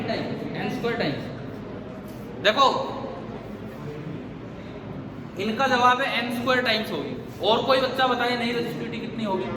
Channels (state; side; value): identical; both; correlation 1.00